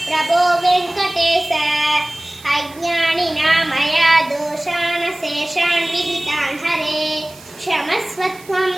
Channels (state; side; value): noise; right; hiss, 22 dB below the sound